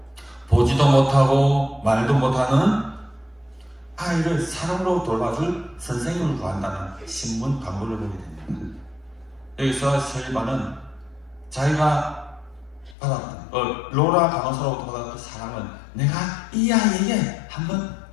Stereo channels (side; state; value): right; drops out; at 13.0 s